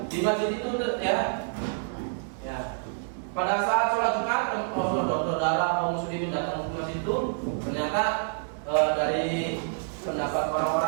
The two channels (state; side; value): silent; left; digital silence